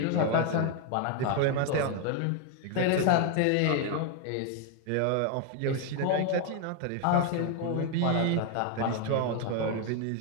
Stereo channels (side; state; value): both; different; correlation 0.01